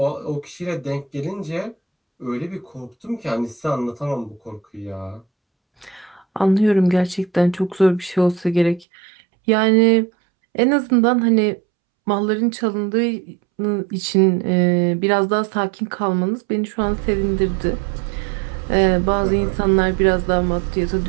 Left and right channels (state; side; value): drops out; left; at 8.8 s